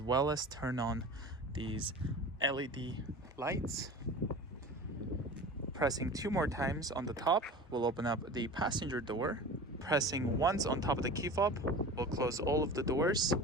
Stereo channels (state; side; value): normal; both; correlation 0.35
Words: well as turn on these LED lights. Pressing 2 more times on the top will open up the passenger door. Pressing once on top of the key fob will close all of the doors,